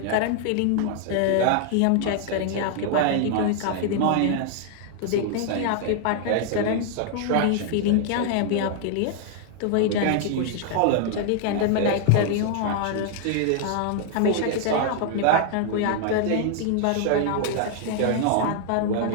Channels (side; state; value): both; different; correlation 0.00